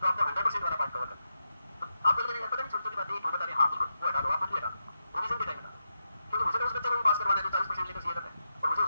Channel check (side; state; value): both; inverted; correlation -0.86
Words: आपको 100% वाला पार्ट कवर करना है। तो आपको लग रहा है पता नहीं छोटी छोटी बातें क्यों बता रहे हैं, हाँ बिल्कुल वो हटा दो, आप बिल्कुल हटा दो, रिवीजन के टाइम हटा दो, क्योंकि मुझे तो उस बच्चे को भी पास करवाना है जो 40% लेकर सीए करता है और मुझे